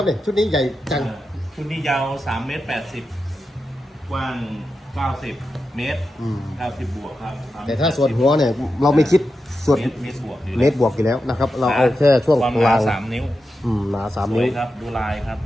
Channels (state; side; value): normal; both; correlation 0.89